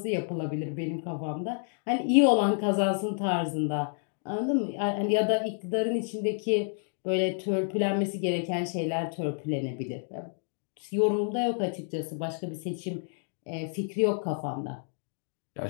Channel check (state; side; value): silent; right; 58 dB below the other